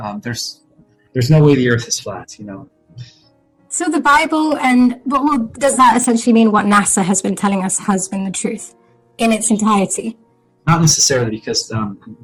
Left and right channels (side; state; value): both; identical; correlation 1.00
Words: there's no way the Earth is flat. So the Bible well, does that essentially mean what NASA has been telling us has been the truth in its entirety? Not necessarily, because